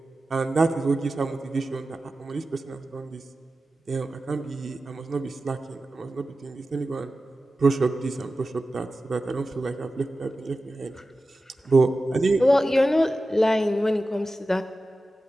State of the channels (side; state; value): both; normal; correlation 0.94